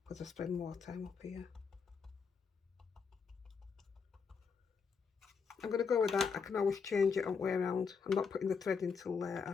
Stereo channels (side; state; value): right; quieter; 5.7 dB